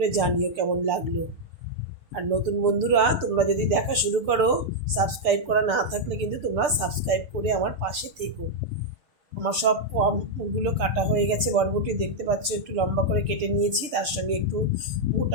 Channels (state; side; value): late; left; 6.7 ms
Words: জানিও কেমন লাগলো। আর নতুন বন্ধুরা, তোমরা যদি দেখা শুরু করো, সাবস্ক্রাইব করা না থাকলে কিন্তু তোমরা সাবস্ক্রাইব করে আমার পাশে থেকো। আমার সব কমগুলো কাটা হয়ে গেছে। বরবটি দেখতে পাচ্ছ একটু লম্বা করে কেটে নিয়েছি, তার সঙ্গে একটু